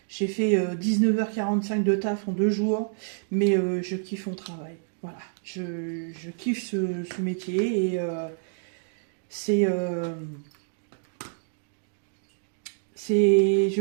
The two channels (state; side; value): silent; left; digital silence